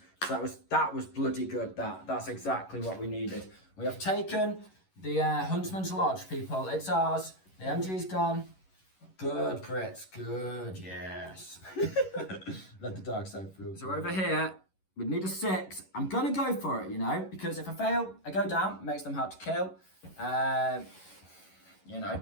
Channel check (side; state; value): right; late; 11 ms